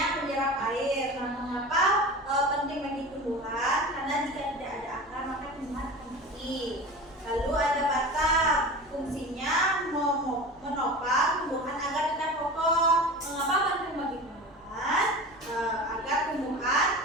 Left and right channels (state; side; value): normal; both; correlation 0.33